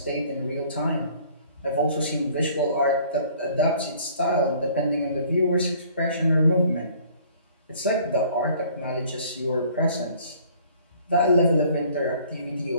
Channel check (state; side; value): inverted; both; correlation -0.55